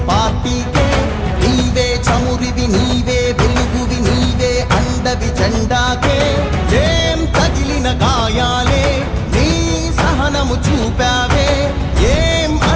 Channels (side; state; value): both; identical; correlation 1.00